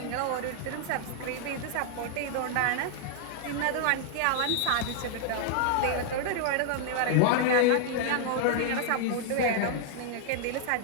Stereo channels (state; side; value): different; both; correlation -0.01